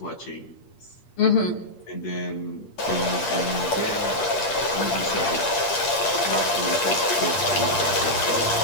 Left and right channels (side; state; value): right; late; 8.4 ms